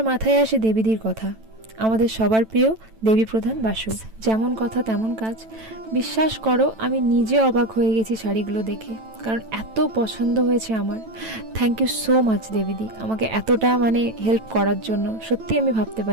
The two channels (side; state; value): left; late; 9.0 ms